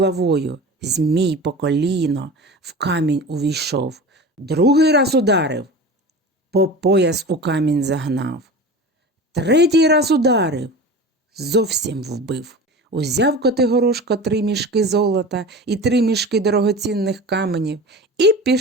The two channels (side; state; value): both; normal; correlation 0.33